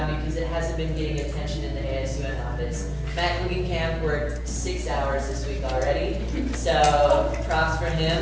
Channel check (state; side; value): identical; both; correlation 1.00